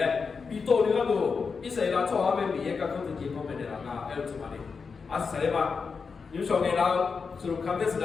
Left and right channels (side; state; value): right; quieter; 5.2 dB